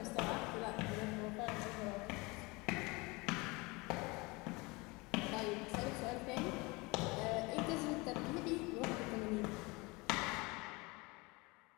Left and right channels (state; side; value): quieter; right; 25.3 dB